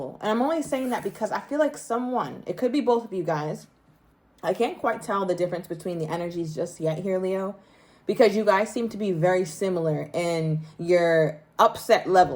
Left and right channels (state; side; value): identical; both; correlation 1.00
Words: And I'm only saying that because I feel like someone, it could be both of you guys, I can't quite tell the difference between the energies just yet here, Leo, because you guys seem to be very similar in your upset